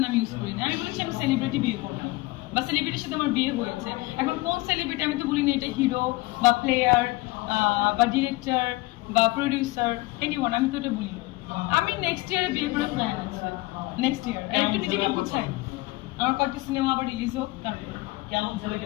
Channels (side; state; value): right; quieter; 21.3 dB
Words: নাম ইউজ করি না, আমি বলেছি আমি সেলিব্রিটি বিয়ে করবো বা সেলিব্রিটির সাথে আমার বিয়ে হয়েছে। এখন কোন সেলিব্রিটি আমি তো বলিনি এটা হিরো বা প্লেয়ার বা ডিরেক্টর বা প্রডিউসার এনিওয়ান, আমি তো এটা বলি না। আমি নেক্সট ইয়ারে বিয়ে করে প্ল্যান আছে, নেক্সট ইয়ার একটু নিজেকে বুঝাই, আমার কয়েকটা সিনেমা আবার রিলিজ হোক তারপর। কেমন ছেলেকে